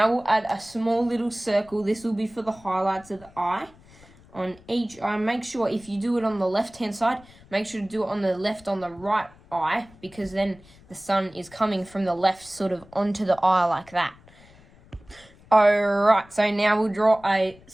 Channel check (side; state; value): left; noise; rumble, 25 dB below the sound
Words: we'll add a small little circle. This will be for the highlights of the eye. On each eye, make sure if you do it on the left-hand side, make sure to do it on the right eye, because then the sun is coming from the left sort of onto the eye like that. Alright, so now we'll draw a